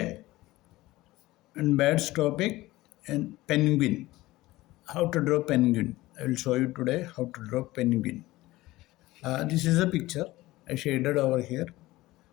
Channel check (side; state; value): right; quieter; 18.3 dB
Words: in Bad's topic in penguin, how to draw penguin. I will show you today how to draw penguin. This is a picture I shaded over here.